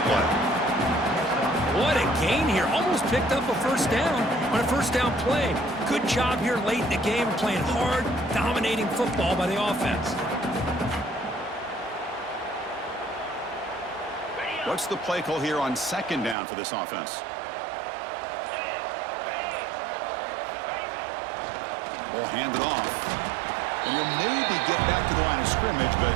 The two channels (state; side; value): drops out; left; at 16.4 s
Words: play. What a gain here. Almost picked up a first down on a first down play. Good job here late in the game, playing hard, dominating football by the offense. What's the play call here on second down for this offense? Ball handed off. And he'll maybe get back to the line of scrimmage, but